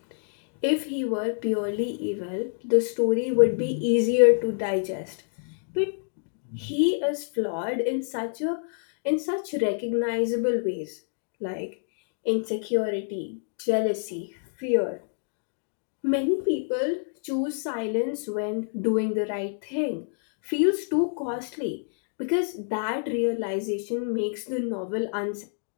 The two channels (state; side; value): silent; right; digital silence